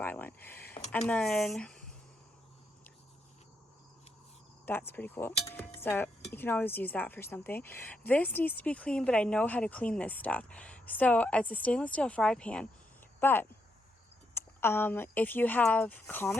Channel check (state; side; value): normal; both; correlation 0.79